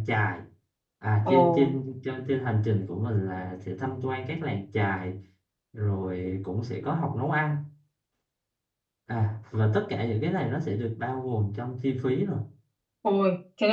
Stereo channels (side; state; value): both; identical; correlation 1.00